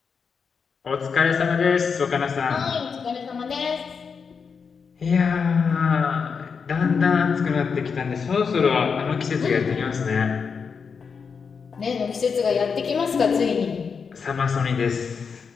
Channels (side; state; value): right; quieter; 5.8 dB